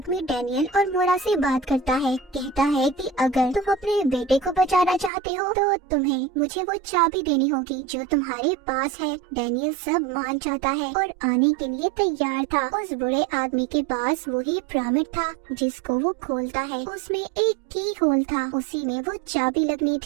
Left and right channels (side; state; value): left; drops out; at 5.1 s